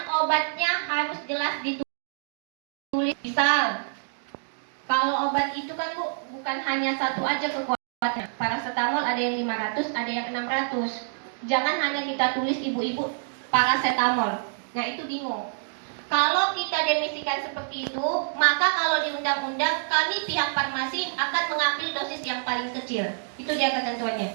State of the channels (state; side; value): silent; left; digital silence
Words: obatnya harus jelas ditulis. Misal, kalau obat itu kan Bu, bukan hanya satu aja kekuatannya. Paracetamol ada yang 500, ada yang 600. Jangan hanya kita tulis ibu-ibu paracetamol. Nah, itu bingung. Kalau kita demisikan seperti itu, maka kalau di undang-undang kami pihak farmasi akan mengambil dosis yang paling kecil. Itu dia ketentuannya.